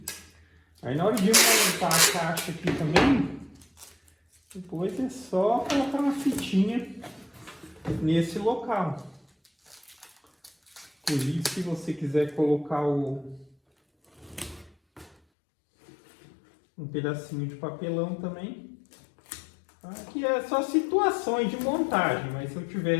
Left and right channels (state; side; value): drops out; right; at 15.2 s